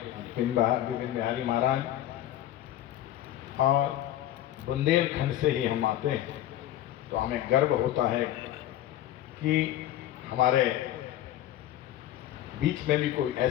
विपिन बिहारी महाराज, और बुंदेलखंड से ही हम आते हैं, तो हमें गर्व होता है कि हमारे बीच में भी कोई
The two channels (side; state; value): right; quieter; 13.1 dB